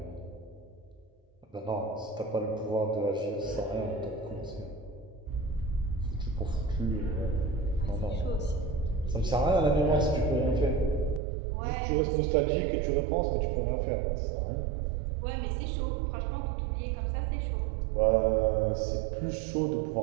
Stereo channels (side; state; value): left; drops out; at 11.2 s